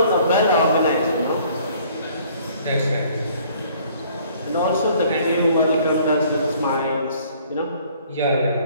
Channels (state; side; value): inverted; both; correlation -0.57